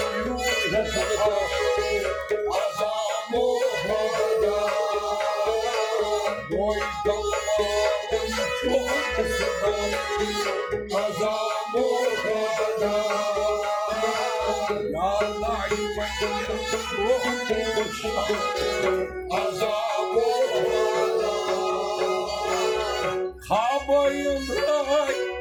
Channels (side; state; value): both; identical; correlation 1.00